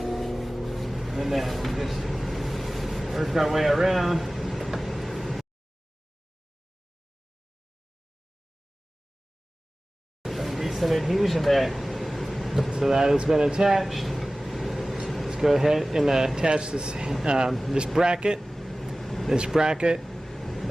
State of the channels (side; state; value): both; normal; correlation 0.97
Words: then we just work our way around. Some adhesion there, so that has been attached. Let's go ahead and attach this this bracket. This bracket